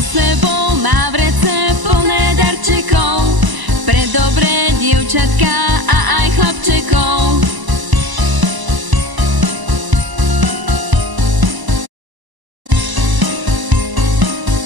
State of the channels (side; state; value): left; late; 1.0 ms